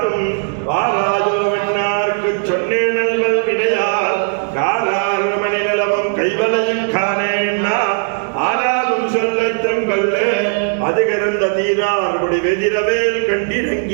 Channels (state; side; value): silent; left; 68 dB below the other